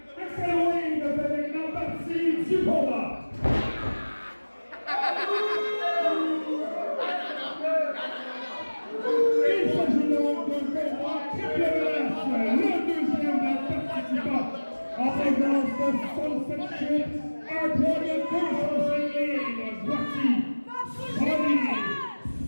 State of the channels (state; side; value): inverted; both; correlation -1.00